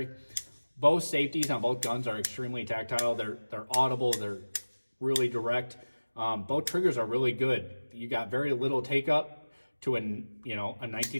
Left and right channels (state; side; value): inverted; both; correlation -1.00